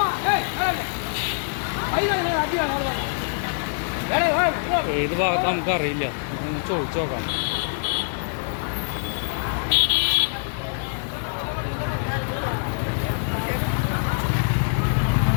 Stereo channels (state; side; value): silent; right; 62 dB below the other